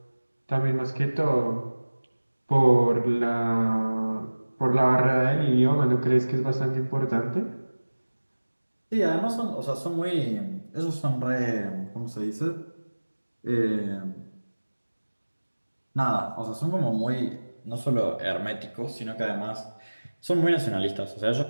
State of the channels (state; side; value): inverted; both; correlation -1.00